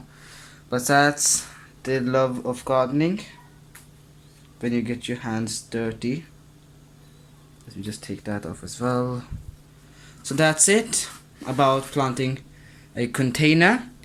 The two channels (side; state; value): both; identical; correlation 1.00